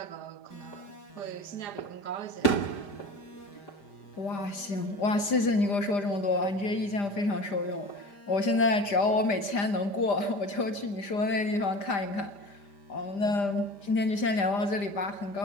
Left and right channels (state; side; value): late; right; 5.0 ms